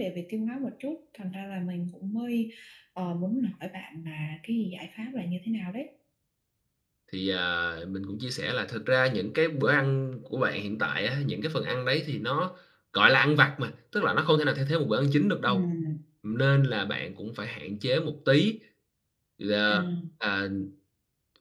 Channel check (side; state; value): both; identical; correlation 1.00